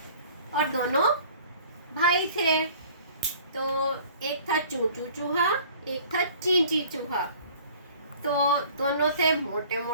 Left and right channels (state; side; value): inverted; both; correlation -0.50